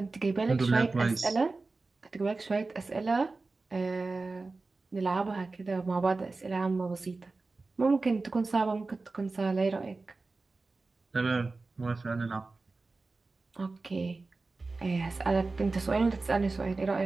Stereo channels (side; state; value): left; quieter; 3.6 dB